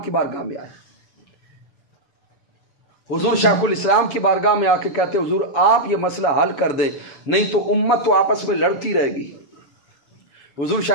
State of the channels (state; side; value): late; right; 7.2 ms